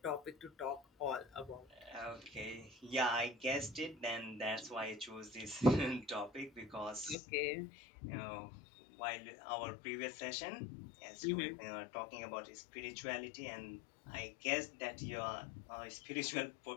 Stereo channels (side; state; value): right; drops out; at 7.2 s